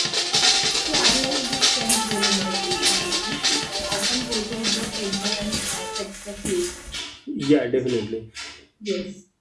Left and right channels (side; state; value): both; identical; correlation 1.00